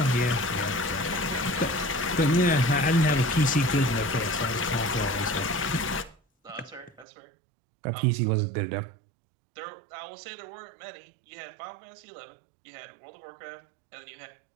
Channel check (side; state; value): left; drops out; at 7.1 s